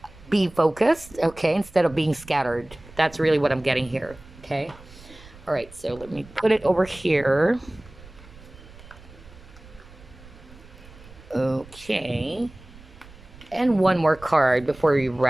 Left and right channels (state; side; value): noise; right; rumble, 21 dB below the sound